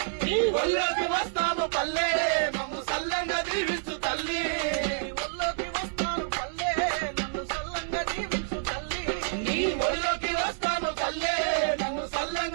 ఒళ్ళోకి వస్తాము పల్లె మమ్ము సల్లంగా దీవించు తల్లి. ఒళ్ళోకి వస్తాను పల్లె నన్ను సల్లంగా దీవించు తల్లి. నీ ఒడిలో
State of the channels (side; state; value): left; silent; 59 dB below the other